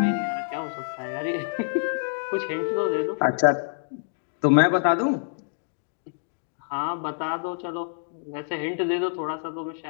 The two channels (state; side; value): silent; right; digital silence